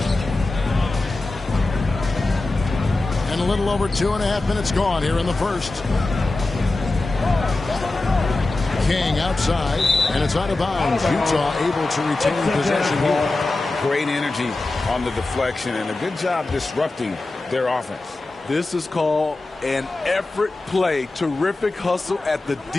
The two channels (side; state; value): right; quieter; 3.1 dB